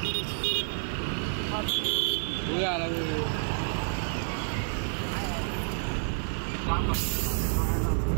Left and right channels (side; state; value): left; silent; 58 dB below the other